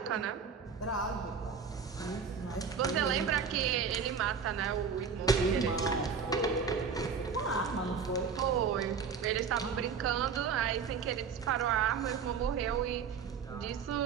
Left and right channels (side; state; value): left; quieter; 6.1 dB